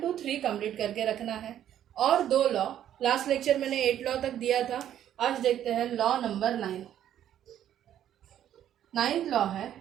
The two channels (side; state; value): left; quieter; 10.9 dB